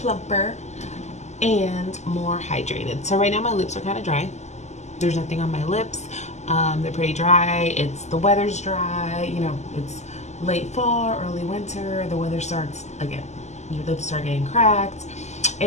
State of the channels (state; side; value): late; right; 0.33 ms